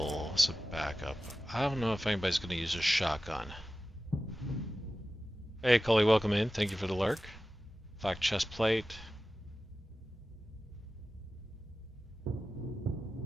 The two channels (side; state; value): both; normal; correlation 0.95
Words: as a backup. I don't know if anybody's going to use a shotgun. Hey, Cully, welcome in. Thank you for the lurk. Black chest plate.